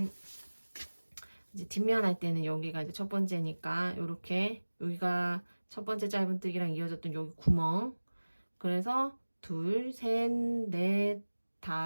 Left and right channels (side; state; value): both; inverted; correlation -1.00